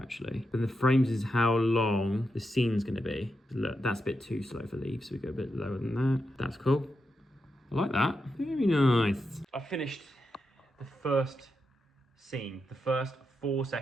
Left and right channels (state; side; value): normal; both; correlation 0.86